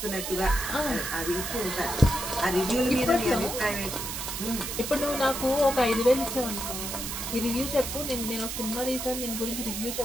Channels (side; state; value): right; noise; hiss, 5 dB below the sound